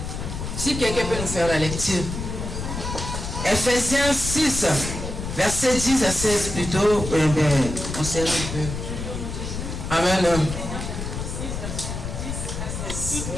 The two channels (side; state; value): left; noise; rumble, 5 dB below the sound